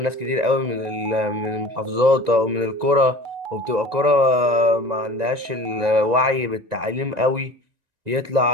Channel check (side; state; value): left; late; 1.9 ms